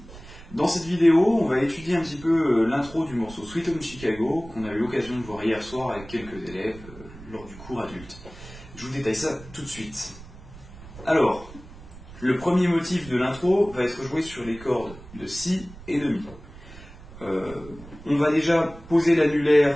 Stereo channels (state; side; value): noise; right; rumble, 17 dB below the sound